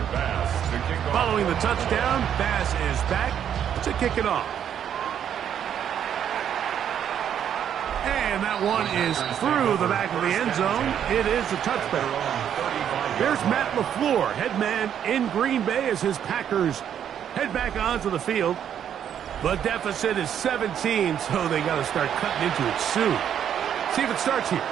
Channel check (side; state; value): left; quieter; 9.2 dB